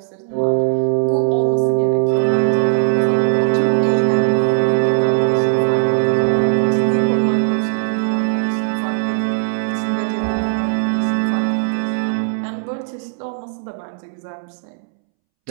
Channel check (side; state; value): left; silent; 67 dB below the other